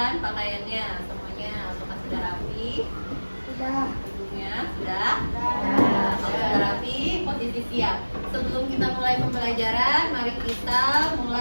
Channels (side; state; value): both; inverted; correlation -1.00